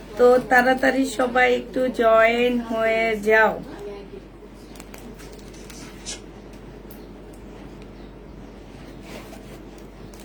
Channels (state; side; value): identical; both; correlation 1.00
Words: তো তাড়াতাড়ি সবাই একটু জয়েন হয়ে যাও।